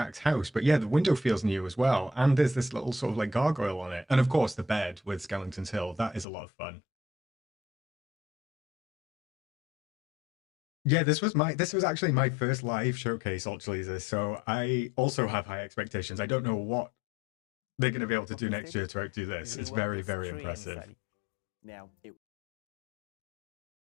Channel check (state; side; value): drops out; right; at 6.2 s